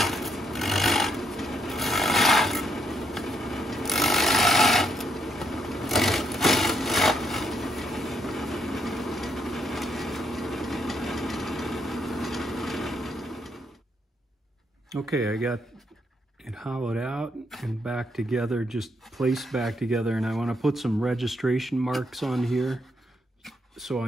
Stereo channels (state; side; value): normal; both; correlation 0.75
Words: Okay, I got it hollowed out and back together, just placed back together, and I want to put some registration marks on here so